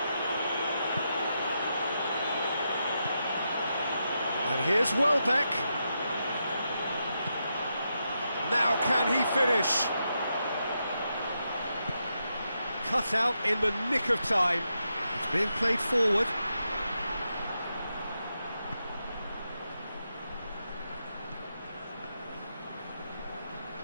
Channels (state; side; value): inverted; both; correlation -0.84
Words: And here's Welbeck. Now can he finish? Cut out in the nick of time. It's being played forward.